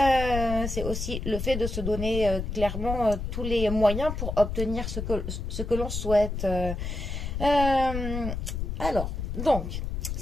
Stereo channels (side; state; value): left; noise; rumble, 4 dB below the sound